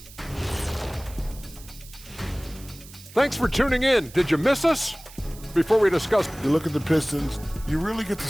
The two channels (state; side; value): noise; right; hiss, 19 dB below the sound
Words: Thanks for tuning in. Did you miss us? Before we discuss, You look at the Pistons, you really get to